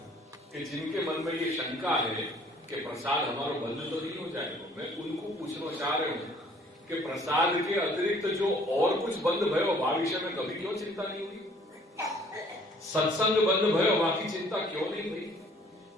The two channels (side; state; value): both; normal; correlation 0.57